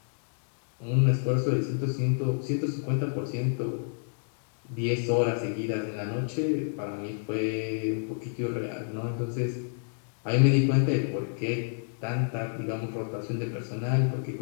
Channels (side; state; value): right; silent; digital silence